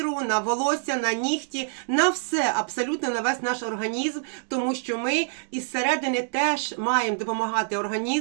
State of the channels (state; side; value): silent; left; digital silence